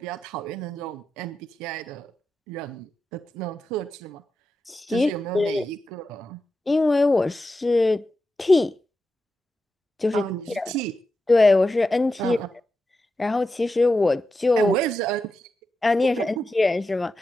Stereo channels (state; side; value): normal; both; correlation 0.90